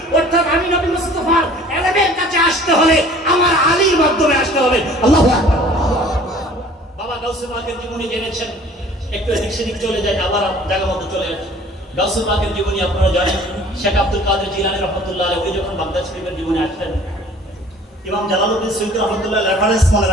অর্থাৎ আমি নবী মুস্তাফার ইলমের কাছে আসতে হলে আমার আলীর মাধ্যমে আসতে হবে। আল্লাহু আকবার। বাবা গাউসে পাকের জীবনী জেনেছেন, একটু এদিক সেদিক চলে যায়, আবার জায়গা মতো চলে আসে। গাউসে পাকের জীবনী আপনারা জানেন, শেখ আব্দুল কাদের জিলানী রাহমাতুল্লাহ আলাইহি উনি যখন বাগদাদ শরীফের জীবনে আসলেন, ইমাম জালালউদ্দিন সুয়ুতী রাহমাতুল্লাহ রেফারেন্স মনে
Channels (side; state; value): both; normal; correlation 0.50